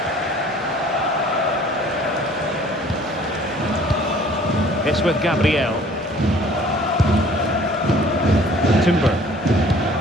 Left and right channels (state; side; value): normal; both; correlation 0.53